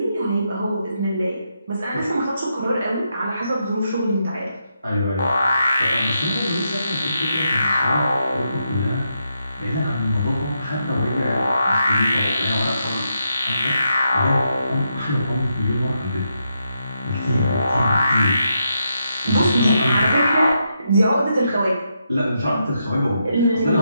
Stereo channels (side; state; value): both; inverted; correlation -0.81